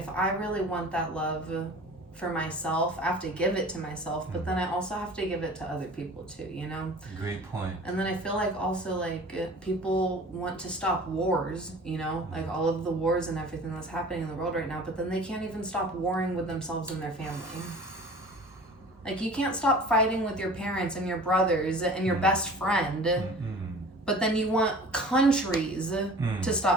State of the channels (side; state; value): both; normal; correlation 0.43